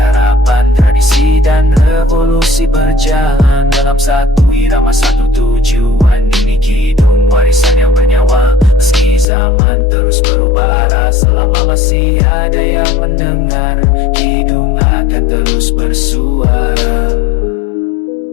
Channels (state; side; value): drops out; right; at 9.2 s